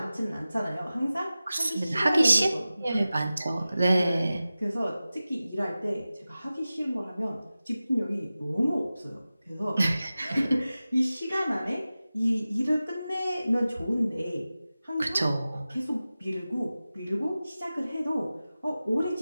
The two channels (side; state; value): both; inverted; correlation -0.95